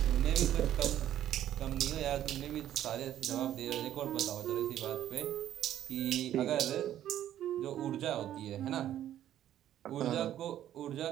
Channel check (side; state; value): left; quieter; 11.7 dB